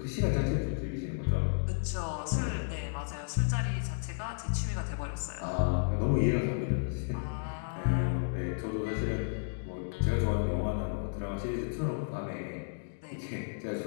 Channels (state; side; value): silent; right; digital silence